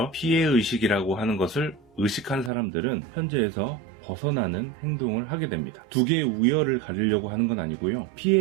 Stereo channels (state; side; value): drops out; left; at 2.5 s